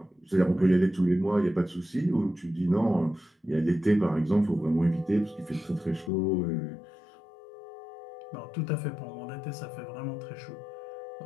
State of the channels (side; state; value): right; drops out; at 6.1 s